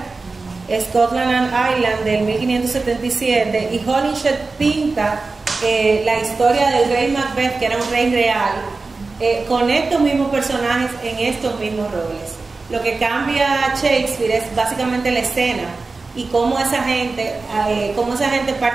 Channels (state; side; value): quieter; left; 3.8 dB